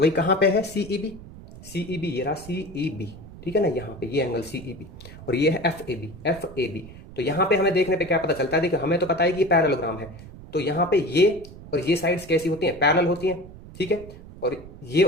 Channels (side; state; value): right; noise; rumble, 16 dB below the sound